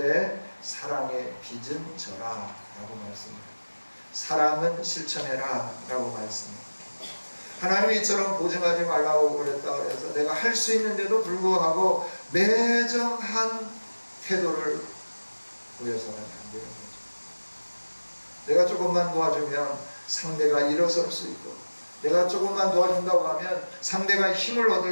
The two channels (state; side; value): inverted; both; correlation -1.00